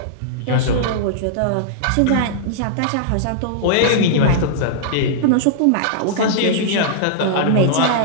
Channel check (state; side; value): different; both; correlation -0.02